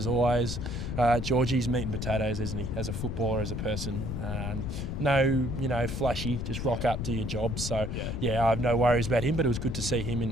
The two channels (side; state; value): left; noise; rumble, 4 dB below the sound